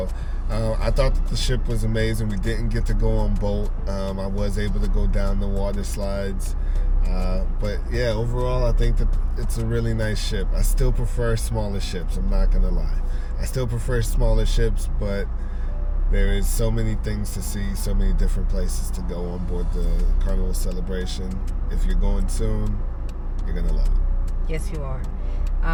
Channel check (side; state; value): both; identical; correlation 1.00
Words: I thought that the ship was amazing. We didn't get to go on boat. I was able to go down the water slides. But yeah, overall, I think that it's a really nice ship. I still prefer smaller ships. I'm not going to lie. I still prefer smaller ships, but there is so many things to see, so many different places to go on board the Carnival Celebration. If you're going soon, you're going to love it. Yes, you are.